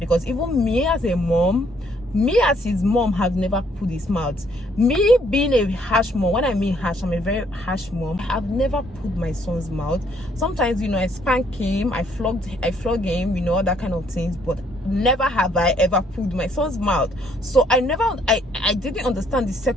even me as a mom, me as his mom, have never pulled his mouth. Me being a harsh mom, when I mean harsh, I'm a very harsh mom, I've never pulled my son's mouth. Sometimes, you know, I spank him, I flog him, you know, that kind of things, but never have I ever pulled my son's mouth. So I didn't understand the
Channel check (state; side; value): normal; both; correlation 0.67